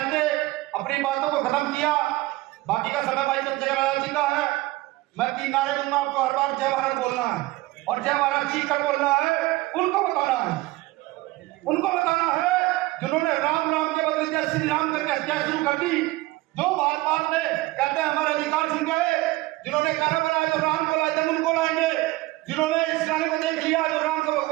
अपनी बातों को खत्म किया, बाकी का समय भाई चंद्रशेखर आजाद जी का है। मैं 3 नारे दूंगा आपको, हर बार जय भारत बोलना है, और जय भारत चीख कर बोलना है। उनको बताना है जिन्होंने राम राम के बदले जय श्री राम करके हत्या शुरू कर दी, जो बात में कहते हैं हमारे अधिकार छिन गए, जिन्होंने गाना बनाया जो राम को लाए थे उनको लाएंगे, जिन्होंने इस गाने को देख लिया जो राम को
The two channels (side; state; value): left; quieter; 19.6 dB